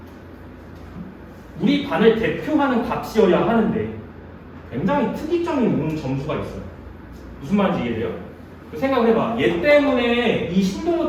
우리 반을 대표하는 값이어야 하는데 굉장히 특이점이 있는 점수가 있어요. 무슨 말인지 이해돼요? 생각을 해봐. 얘 때문에 이 신동호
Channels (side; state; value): both; identical; correlation 1.00